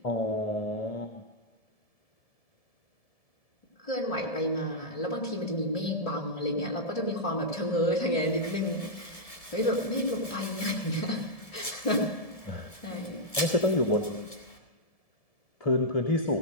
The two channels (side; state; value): right; late; 1.7 ms